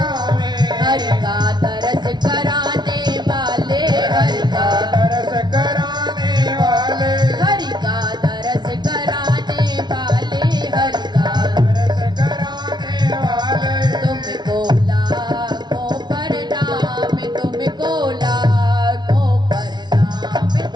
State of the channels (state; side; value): late; left; 0.20 ms